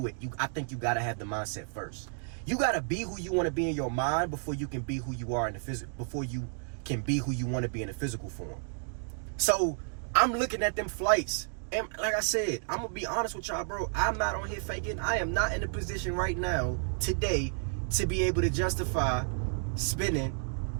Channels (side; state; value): left; silent; 57 dB below the other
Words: it, I think you gotta have the mindset first. You gotta be who you want to be in your mind before you can be who you are in the physical. Before you can be who you want to be in the physical form. So I'm looking at them flights, and like I said, I'm gonna be honest with y'all, bro. I'm not on here faking. I am not in a position right now, today, to be able to justify spending